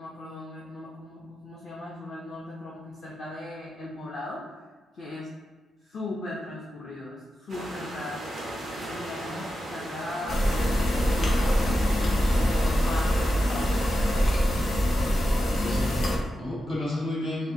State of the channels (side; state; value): both; normal; correlation 0.90